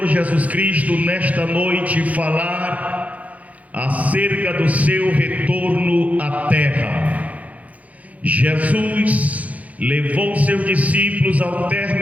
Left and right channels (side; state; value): left; late; 0.070 ms